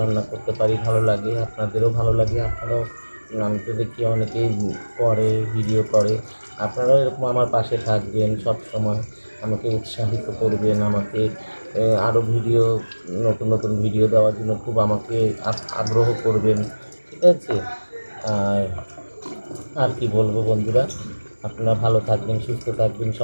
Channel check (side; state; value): both; inverted; correlation -1.00